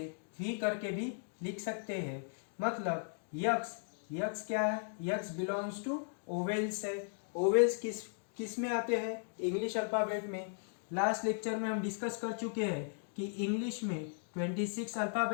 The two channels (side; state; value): right; silent; digital silence